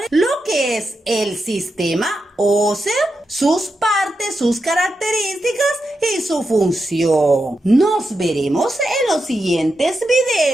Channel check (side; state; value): both; normal; correlation 0.87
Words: lo que es el sistema óseo, sus partes, sus características y su función. Nos veremos en los siguientes